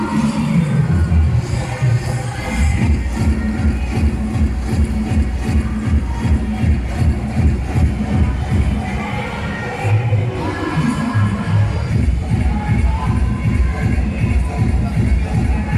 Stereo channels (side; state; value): both; identical; correlation 1.00